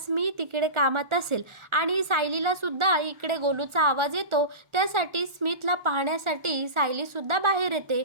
तिकडे कामात असेल आणि सायलीला सुद्धा इकडे गोलूचा आवाज येतो. त्यासाठी स्मितला पाहण्यासाठी सायली सुद्धा बाहेर येते.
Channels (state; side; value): late; left; 1.4 ms